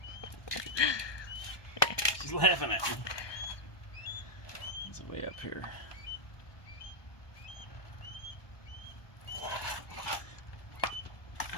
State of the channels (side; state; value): right; late; 1.2 ms